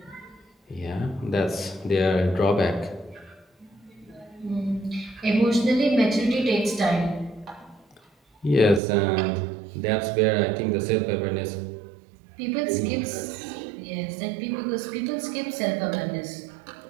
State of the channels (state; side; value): drops out; left; at 8.8 s